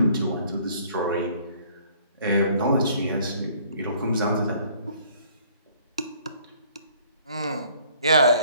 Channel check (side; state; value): both; inverted; correlation -0.58